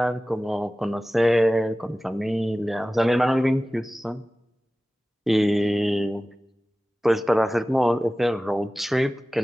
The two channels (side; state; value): both; normal; correlation 0.97